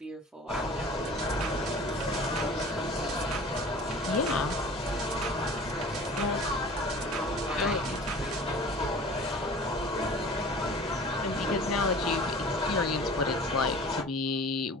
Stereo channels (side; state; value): both; normal; correlation 0.43